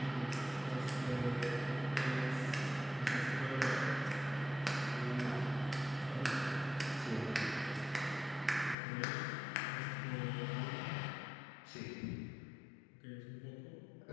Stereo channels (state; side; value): drops out; right; at 8.8 s